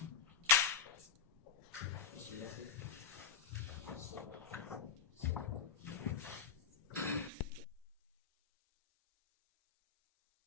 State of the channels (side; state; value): right; quieter; 7.4 dB